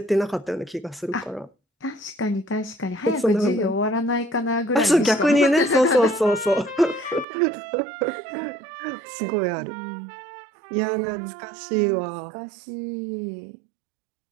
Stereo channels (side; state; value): left; drops out; at 7.2 s